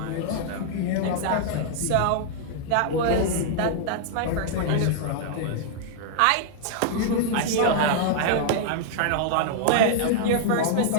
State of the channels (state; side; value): different; both; correlation -0.01